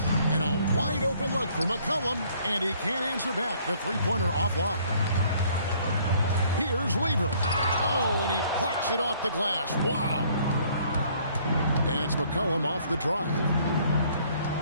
And a wide open look for McCollum, and he can't answer back. The three-pointer offline. Here's Lever. Oh, and he plucks it off the glass. Wow. And it's McCollum off the drive.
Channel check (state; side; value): inverted; both; correlation -0.61